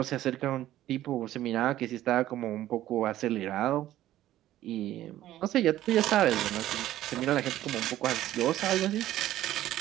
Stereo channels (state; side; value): quieter; left; 13.7 dB